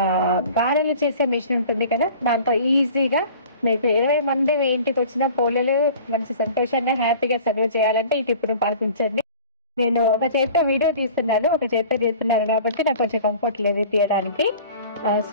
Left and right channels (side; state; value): both; inverted; correlation -0.45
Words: గారెలు చేసే మిషన్ ఉంటుంది కదా! దాంతో ఈజీగా మీకు 20 మంది మీ ఇంటికొచ్చినా పోలేలు మంచి సంతోషంగా, హ్యాపీగా సర్వ్ చేయాలంటే ఈ టిప్‌ని పాటించండి. నేను ఒక చేత్తో వీడియో తీస్తున్నాను. ఒక చేత్తో చేస్తున్నాను కాబట్టి నాకు కొంచెం కంఫర్ట్ లేదు తీయడానికి.